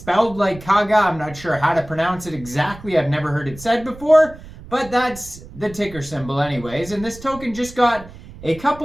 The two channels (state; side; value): noise; right; rumble, 17 dB below the sound